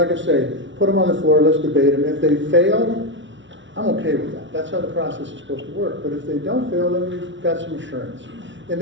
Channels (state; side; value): late; left; 0.55 ms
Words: I say, put them on the floor, let's debate them. If they fail, I'm okay with that. That's how the process is supposed to work. But if they don't fail, then we've got some assurance. And